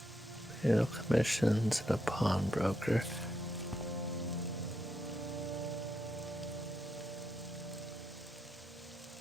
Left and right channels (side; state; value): both; normal; correlation 0.81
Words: Commissions and a pawnbroker.